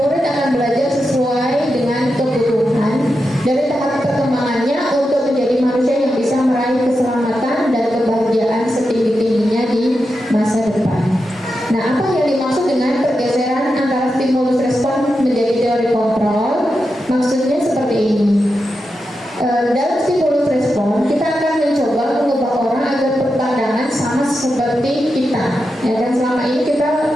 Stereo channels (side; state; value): both; normal; correlation 0.89